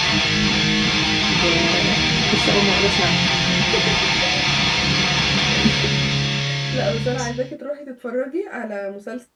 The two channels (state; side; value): identical; both; correlation 1.00